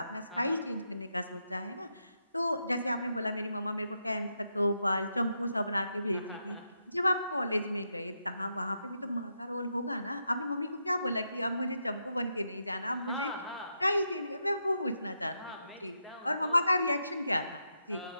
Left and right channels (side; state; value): both; inverted; correlation -0.83